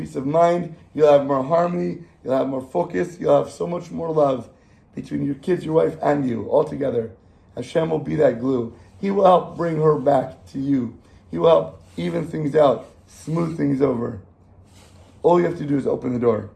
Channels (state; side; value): identical; both; correlation 1.00